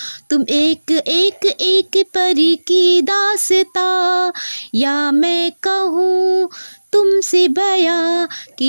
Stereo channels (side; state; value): both; inverted; correlation -1.00